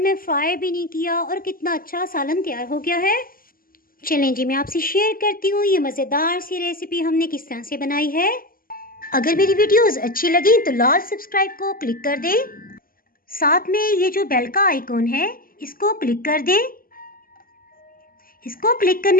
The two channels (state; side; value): late; right; 0.42 ms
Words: में फ्राई भी नहीं किया और कितना अच्छा सालन तैयार हो गया है। चलें जी, मैं आपसे शेयर करती हूँ ये मज़ेदार सी रेसिपी हमने किस तरह से बनाई है। अगर मेरी वीडियोस अच्छी लगी तो लाल सब्सक्राइब को क्लिक कर दें, साथ में ये जो बेल का आइकॉन है इसको क्लिक कर दें। इसको क्लिक